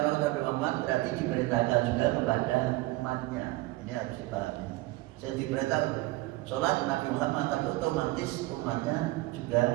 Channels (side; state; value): left; quieter; 19.8 dB